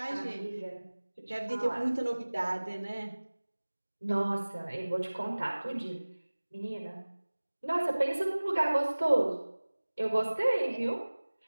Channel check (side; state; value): both; inverted; correlation -1.00